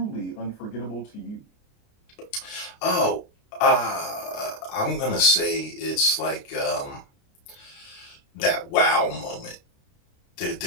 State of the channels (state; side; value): late; right; 29 ms